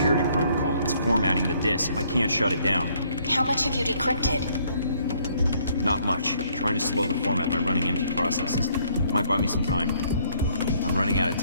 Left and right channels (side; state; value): both; inverted; correlation -0.66